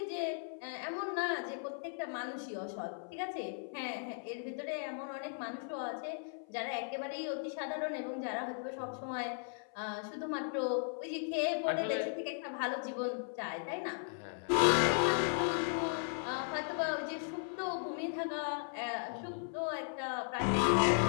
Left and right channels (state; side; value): silent; right; 53 dB below the other